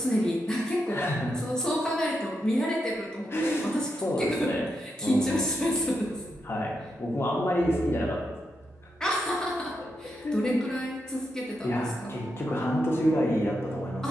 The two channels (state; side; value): normal; both; correlation 0.84